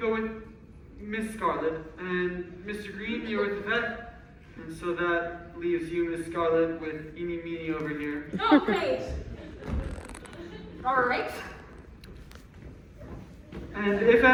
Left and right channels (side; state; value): both; identical; correlation 1.00